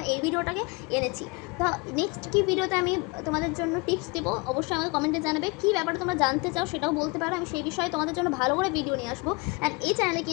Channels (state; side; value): quieter; right; 28.0 dB